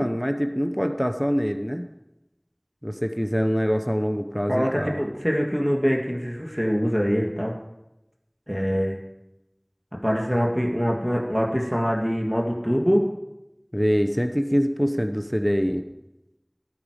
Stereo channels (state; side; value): identical; both; correlation 1.00